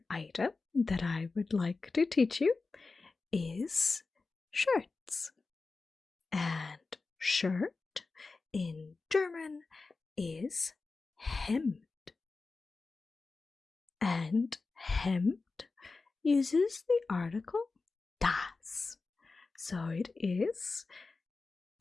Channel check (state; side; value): quieter; right; 4.0 dB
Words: item that I would like to teach you is shirts. And shirt in German is Hemd. And Hemd uses the article das. So it is